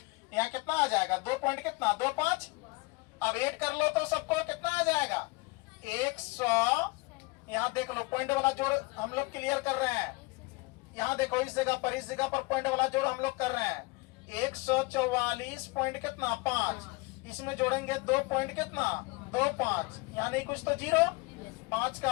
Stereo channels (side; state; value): right; quieter; 25.1 dB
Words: यहाँ कितना आ जाएगा 2 पॉइंट कितना 25। अब ऐड कर लो तो सबको कितना आ जाएगा 100। यहाँ देख लो पॉइंट वाला जोड़ हम लोग क्लियर कर रहे हैं। यहाँ देखो इस जगह पर पॉइंट वाला जोड़ हम लोग कर रहे हैं 144 पॉइंट कितना 5 इसमें जोड़ेंगे 2 पॉइंट कितना 2 5 यहाँ नहीं कुछ तो 0 5